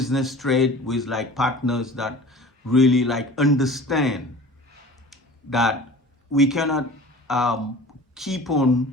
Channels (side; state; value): both; normal; correlation 0.42